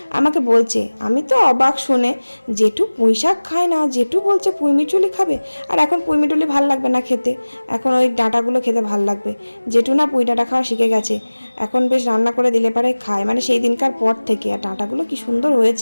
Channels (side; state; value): both; inverted; correlation -1.00